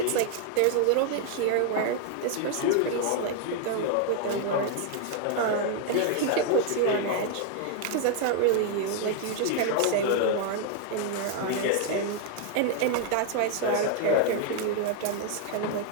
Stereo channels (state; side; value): different; both; correlation 0.00